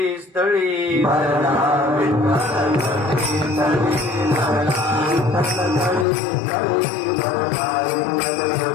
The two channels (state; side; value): drops out; right; at 6.1 s